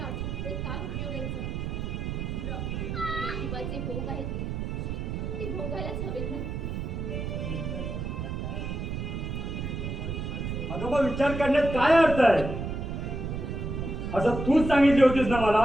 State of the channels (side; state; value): right; noise; rumble, 4 dB below the sound